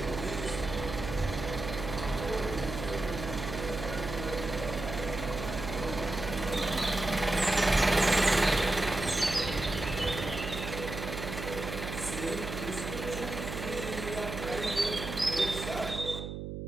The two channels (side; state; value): right; noise; hum, 6 dB below the sound